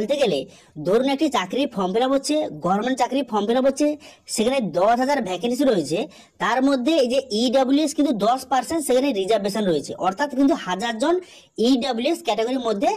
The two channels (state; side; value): identical; both; correlation 1.00